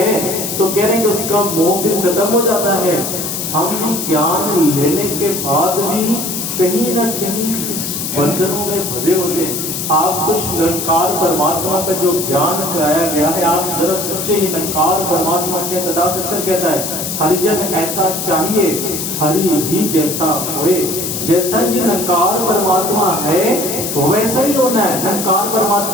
तो कह रहे कि उसका मोह फिर खत्म हो जाता है। हम भी ज्ञान लेने के बाद भी कहीं ना कहीं इस बंधनों में बंधे होते हैं। आपको निरंकार परमात्मा का जो ज्ञान कराया गया है, आप जरा सोचिए, निरंकार परमात्मा के सदा सच्चर कहता है, हरिजन ऐसा चाहिए हरि ही जैसा होए। जैसा ये निरंकार परमात्मा है वैसा ही होना है। निरंकार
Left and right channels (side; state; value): left; noise; hiss, 4 dB below the sound